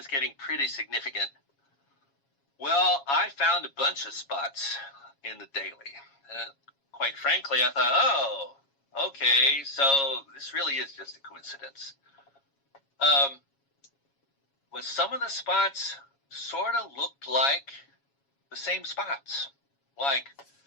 getting pretty significant. Well, I found a bunch of spots in the daily. Quite frankly, I thought, oh, okay, so this really is just a coincidence. But some of the spots sort of looked like the same spots. Like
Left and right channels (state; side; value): late; right; 7.3 ms